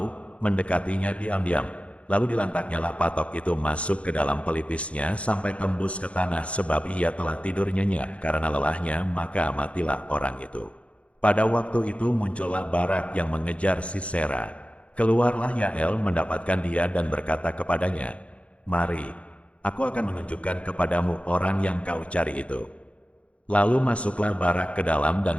mendekatinya diam-diam, lalu dilantaknyalah patok itu masuk ke dalam pelipisnya sampai tembus ke tanah, sebab ia telah tidur nyenyak karena lelahnya, maka matilah orang itu. Pada waktu itu muncullah Barak yang mengejar Sisera. Keluarlah Yael mendapatkan dia dan berkata kepadanya, "Mari, aku akan menunjukkan kepadamu orang yang kau cari itu." Lalu masuklah Barak ke dalam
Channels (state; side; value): late; right; 0.062 ms